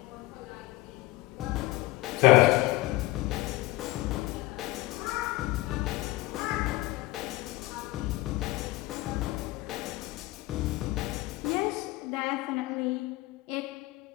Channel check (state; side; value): quieter; right; 19.0 dB